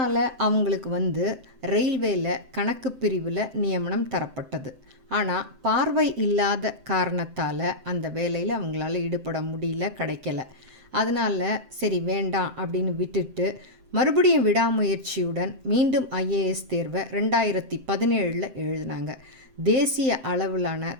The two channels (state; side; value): late; left; 7.7 ms